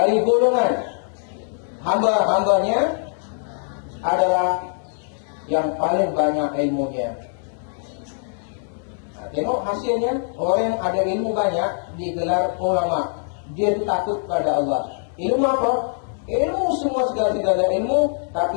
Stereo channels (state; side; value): silent; right; 64 dB below the other